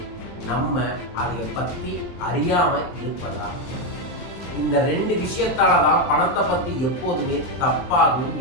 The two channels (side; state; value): right; late; 23 ms